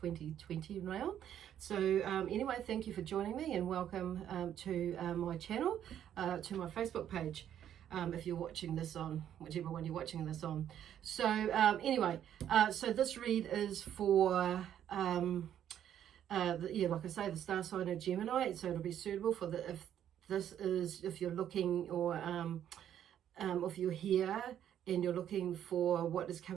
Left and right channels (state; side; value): quieter; left; 10.3 dB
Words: now. So anyway, thank you for joining me, and welcome to my channel, to my Facebook page. If you're watching this on whichever one you're watching this on. So anyway, so this read is for like I say, the star sign of Gemini, so it'll be suitable for if you're looking, or if you're here and you're looking for what is